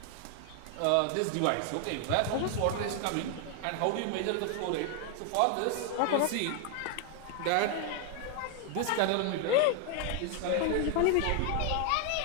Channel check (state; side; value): different; both; correlation 0.00